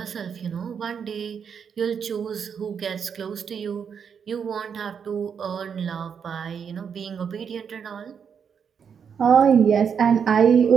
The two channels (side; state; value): left; quieter; 7.0 dB